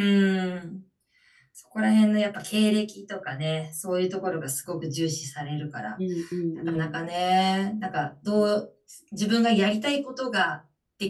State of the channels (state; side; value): identical; both; correlation 1.00